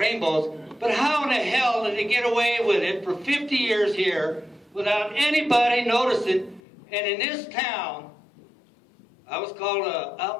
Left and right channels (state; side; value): drops out; right; at 6.6 s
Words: but how in the hell did they get away with it for 50 years here without anybody noticing? And in this town, I was called an